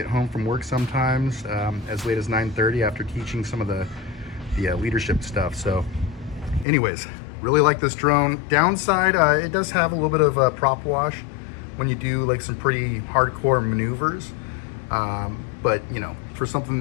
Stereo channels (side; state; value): right; drops out; at 6.7 s